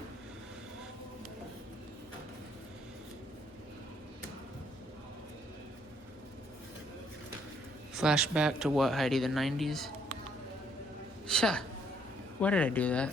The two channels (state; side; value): normal; both; correlation 0.67